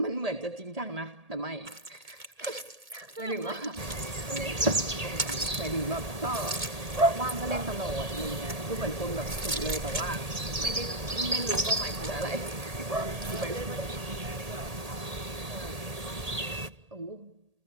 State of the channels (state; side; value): late; left; 1.8 ms